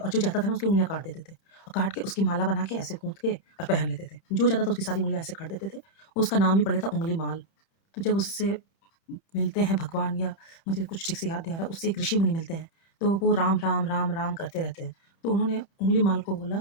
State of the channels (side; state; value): right; late; 30 ms